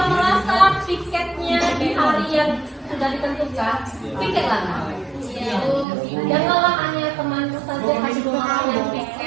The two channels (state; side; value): drops out; left; at 5.9 s